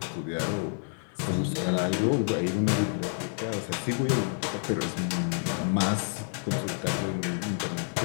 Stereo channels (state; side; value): silent; right; digital silence